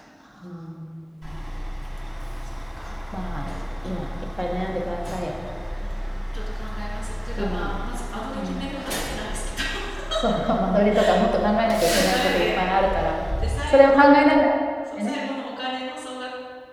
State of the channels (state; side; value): identical; both; correlation 1.00